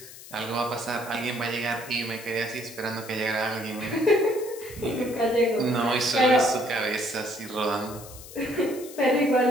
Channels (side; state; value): left; noise; hiss, 16 dB below the sound